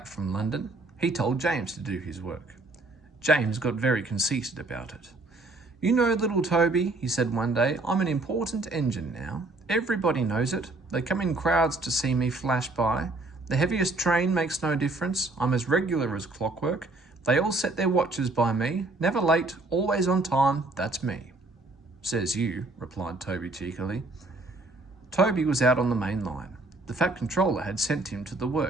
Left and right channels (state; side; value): quieter; left; 3.1 dB